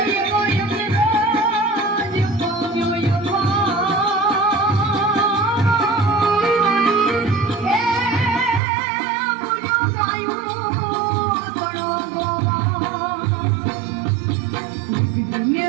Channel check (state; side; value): drops out; left; at 8.6 s